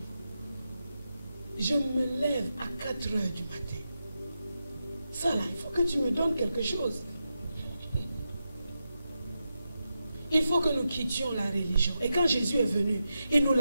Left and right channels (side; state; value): both; inverted; correlation -0.88